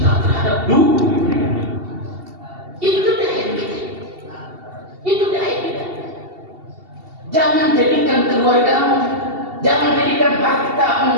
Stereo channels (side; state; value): left; late; 2.7 ms